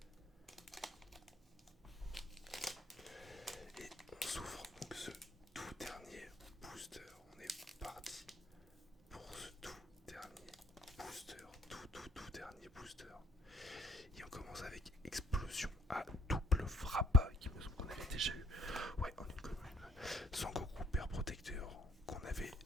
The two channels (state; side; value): normal; both; correlation 0.64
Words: Et on s'ouvre donc ce tout dernier booster. On est parti pour ce tout dernier booster. Tout dernier booster. Et on commence avec explosion à double frappe, qui me semble qu'on avait déjà eu. Ouais, en une commune. Sangoku père protecteur, qu'on avait